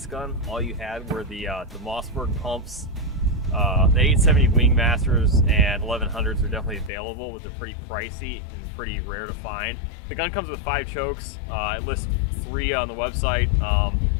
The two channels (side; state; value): right; drops out; at 6.9 s